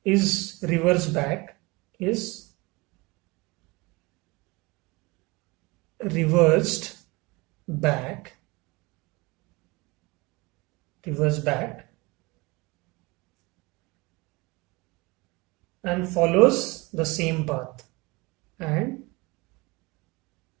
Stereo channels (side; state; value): left; quieter; 24.7 dB